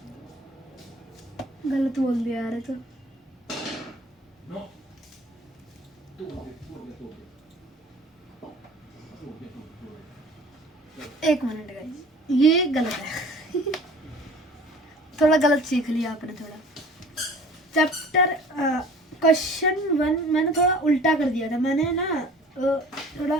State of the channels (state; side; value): normal; both; correlation 0.46